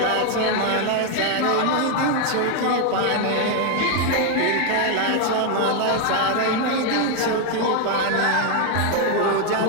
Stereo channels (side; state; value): both; different; correlation 0.01